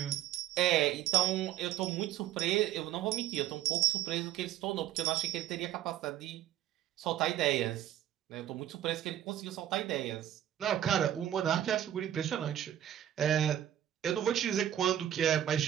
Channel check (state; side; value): quieter; left; 11.5 dB